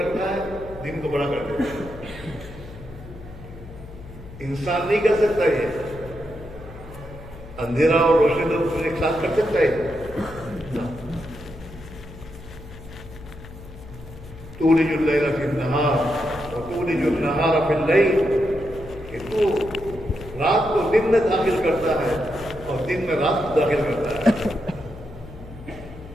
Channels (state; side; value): noise; left; hum, 16 dB below the sound